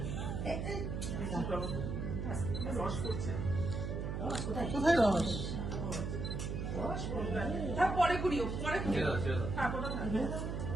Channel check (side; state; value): right; noise; hum, 3 dB below the sound